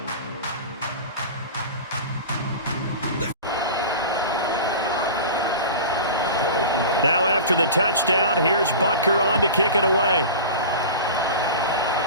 Now after the touchdown, here's Butker on to kick it away.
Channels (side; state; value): both; inverted; correlation -0.33